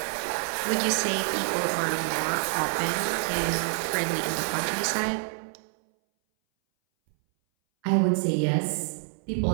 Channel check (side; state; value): left; silent; 59 dB below the other